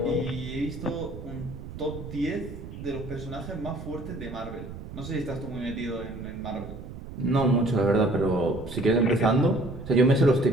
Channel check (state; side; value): noise; right; rumble, 11 dB below the sound